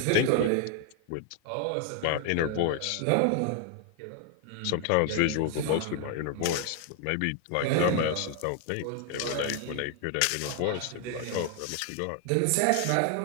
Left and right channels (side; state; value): both; different; correlation 0.00